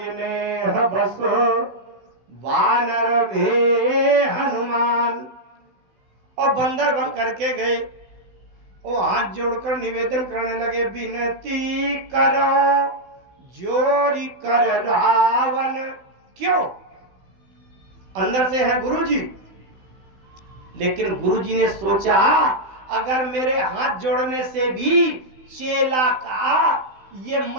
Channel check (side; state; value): left; late; 16 ms